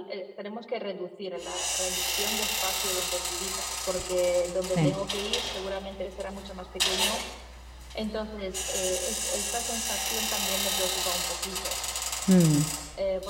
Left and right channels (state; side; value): identical; both; correlation 1.00